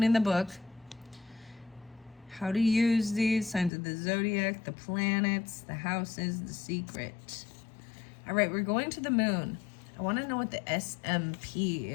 the book. How to use these, signs of the zodiac, the planets, the houses, the secret. All right, we're going to the moon. I want to know what the SMP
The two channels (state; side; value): drops out; right; at 3.7 s